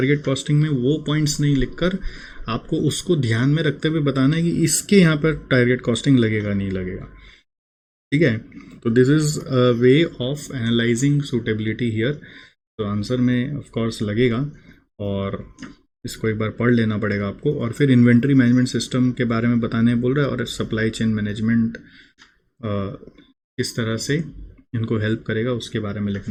कॉस्टिंग में वो पॉइंट्स नहीं लिखकर आपको उसको ध्यान में रखते हुए बताना है कि इसके यहाँ पर टारगेट कॉस्टिंग लगेगा नहीं लगेगा, ठीक है। तो this is a way of analysing suitability here. तो आंसर में ऑफ कोर्स लगेगा, और इसको एक बार पढ़ लेना पड़ेगा आपको। और फिर इन्वेंट्री मैनेजमेंट सिस्टम के बारे में बताने बोल रहा है, और सप्लाई चेन मैनेजमेंट किस तरह से इनको हेल्प करेगा उसके बारे में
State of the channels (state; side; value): identical; both; correlation 1.00